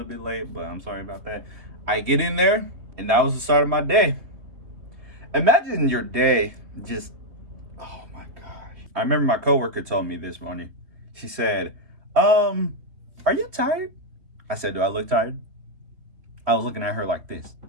bit late, but I'm sorry about that. I get in there and that was the start of my day. Imagine your day just, oh my gosh. I remember my coworker told me this morning. She said, are you tired? I said, do I look tired? I was looking at her like this.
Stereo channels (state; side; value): late; left; 3.4 ms